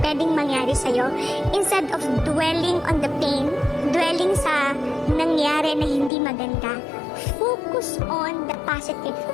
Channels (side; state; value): right; drops out; at 6.1 s